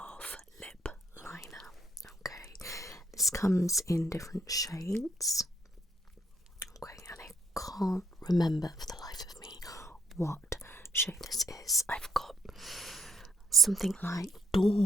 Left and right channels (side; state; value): both; normal; correlation 0.73